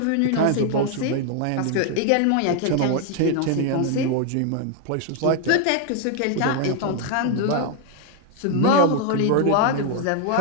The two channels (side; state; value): both; different; correlation 0.00